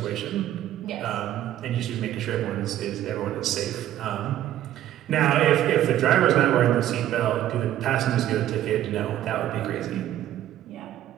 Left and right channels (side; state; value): left; quieter; 12.6 dB